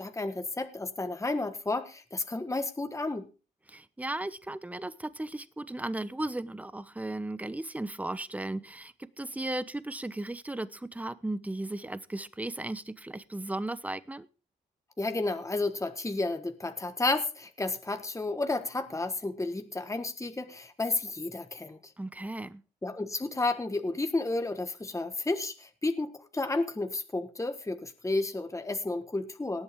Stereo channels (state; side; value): normal; both; correlation 0.74